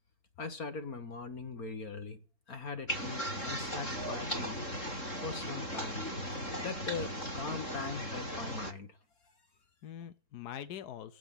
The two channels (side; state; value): right; late; 3.7 ms